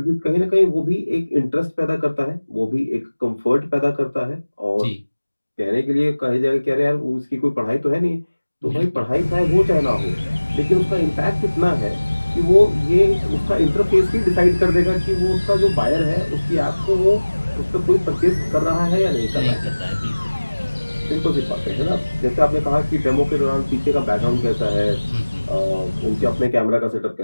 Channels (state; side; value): inverted; both; correlation -1.00